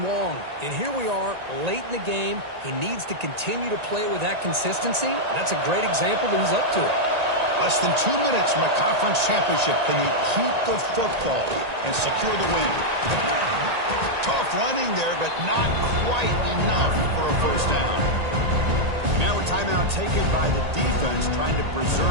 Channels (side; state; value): left; late; 1.8 ms